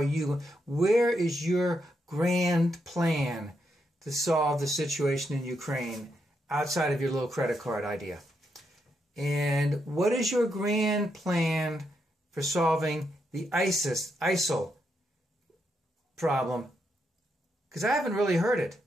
Where is your grand plan to solve the situation in Ukraine outside of your little credit card idea? And what is your grand plan for solving the ISIL problem? Because I haven't really heard it.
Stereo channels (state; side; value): normal; both; correlation 0.81